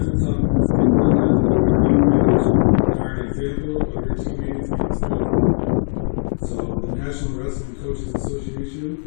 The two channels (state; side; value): silent; right; digital silence